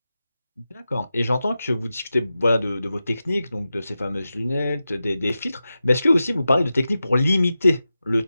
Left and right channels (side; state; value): both; inverted; correlation -0.92